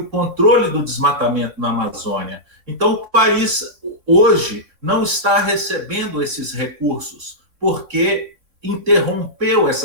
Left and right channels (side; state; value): left; late; 3.5 ms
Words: controle do desmatamento na Amazônia. Então, o país hoje não está recebendo esses recursos, porque interrompeu